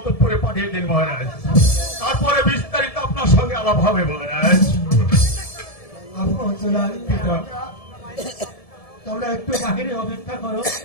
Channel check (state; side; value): late; right; 1.7 ms